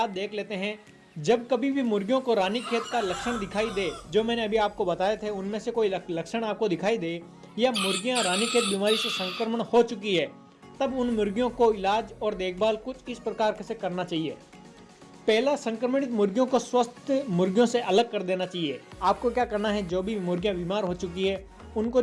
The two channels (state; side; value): identical; both; correlation 1.00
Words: देख लेते हैं। जब कभी भी मुर्गियों को रानीखेत का लक्षण दिखाई दे, जो मैंने अभी आपको बताए थे उनमें से कोई लक्षण आपको दिखाई दे या मुर्गियां रानीखेत बीमारी से संक्रमण हो चुकी है, तब उन मुर्गियों को इलाज और देखभाल कुछ इस प्रकार से करना चाहिए। पहला, संक्रमित मुर्गियों को स्वस्थ मुर्गियों से अलग कर देना चाहिए। आपको क्या करना है, जो भी मुर्गियां बीमार हो चुकी है उनको